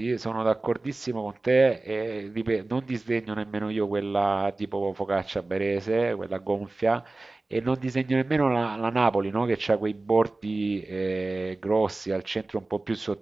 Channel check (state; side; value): quieter; left; 3.1 dB